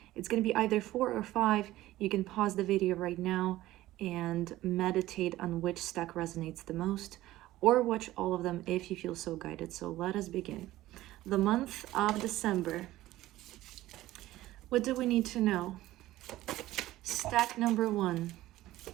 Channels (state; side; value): quieter; left; 16.0 dB